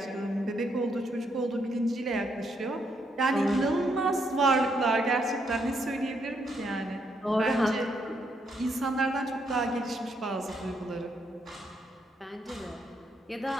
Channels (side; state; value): both; normal; correlation 0.76